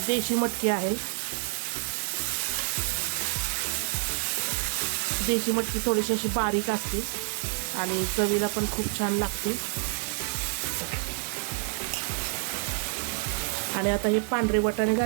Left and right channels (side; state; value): left; silent; 59 dB below the other